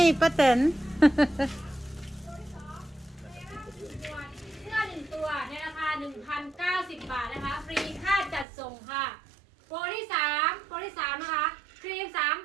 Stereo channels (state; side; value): drops out; left; at 8.5 s